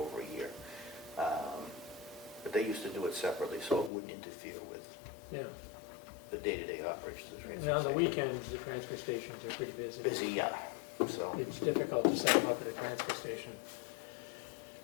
a year. But they used to do it separately, so it wouldn't interfere with Yeah. the day-to-day operations of the transfer And station. on the weekends, the transfer stations are pretty busy. Busy, yeah. So, It's difficult to set them up at a transfer station.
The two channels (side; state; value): right; drops out; at 3.9 s